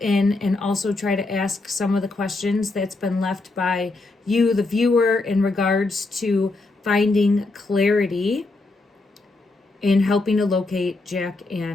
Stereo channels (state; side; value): quieter; right; 3.3 dB